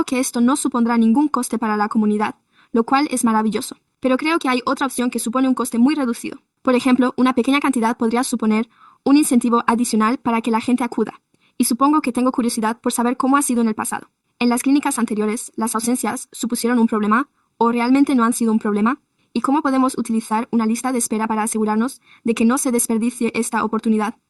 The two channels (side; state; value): both; identical; correlation 1.00